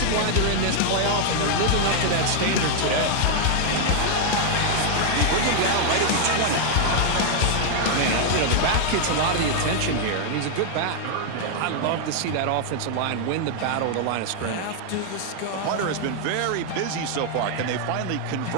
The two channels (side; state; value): both; different; correlation 0.00